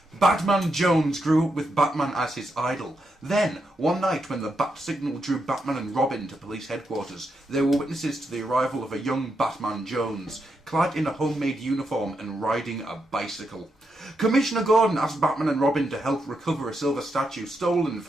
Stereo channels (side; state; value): both; normal; correlation 0.83